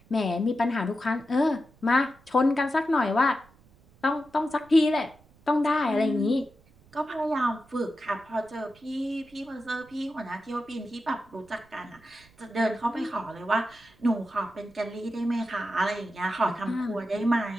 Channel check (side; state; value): right; noise; rumble, 28 dB below the sound